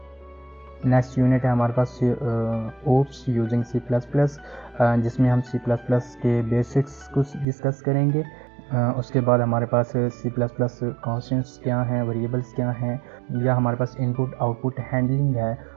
नेक्स्ट यूनिट है हमारे पास ओप्स यूजिंग C++, जिसमें हम C++ के बेसिक्स को डिस्कस करेंगे। उसके बाद हमारे पास C++ कॉन्स्टेंट्स क्या हैं, वेरिएबल्स क्या हैं, या हमारे पास इनपुट आउटपुट हैंडलिंग है,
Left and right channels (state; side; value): drops out; left; at 7.5 s